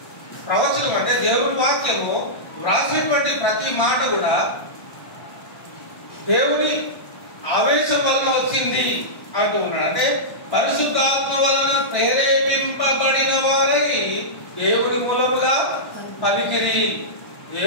ప్రవచనం అంటే దేవుని వాక్యము వ్రాసేటువంటి ప్రతి మాట కూడా దేవుని ఆవేశం వలన వచ్చింది అంటూ ఉన్నాడు. అంటే పరిశుద్ధాత్మ వలన ప్రేరేపింపబడిన వారై దేవుని మూలముగా పలికిరి.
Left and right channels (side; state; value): right; late; 1.1 ms